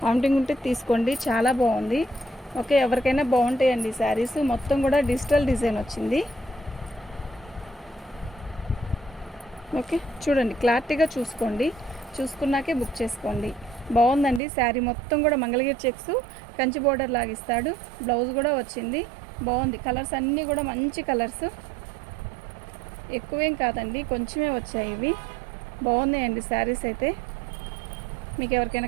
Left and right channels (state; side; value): drops out; left; at 14.4 s